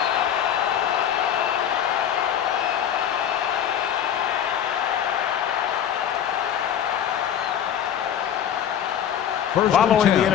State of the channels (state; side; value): quieter; right; 9.5 dB